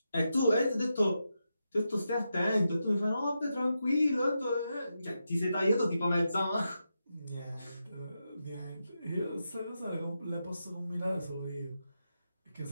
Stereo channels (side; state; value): both; inverted; correlation -0.87